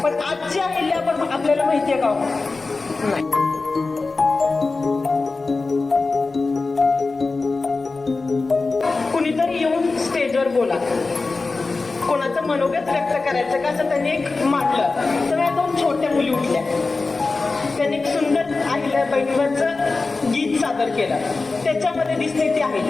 पण आजची अहिल्या पण आपल्याला माहिती आहे का? नाही. कुणीतरी येऊन स्टेजवर बोला, कोणाचं मनोगत व्यक्त करायचं का असं त्यांनी एक मांडलं. तर या दोन छोट्या मुली उठल्या, त्यांनी एक सुंदर अहिल्याबाईंवरचं गीत सादर केलं. त्याच्यामध्ये दिसते ती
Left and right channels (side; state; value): right; quieter; 3.8 dB